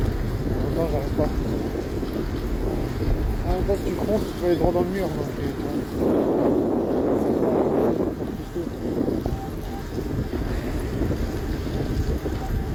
non, j'arrive pas. Ah, quand tu comptes, tu peux aller droit dans le mur,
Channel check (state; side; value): identical; both; correlation 1.00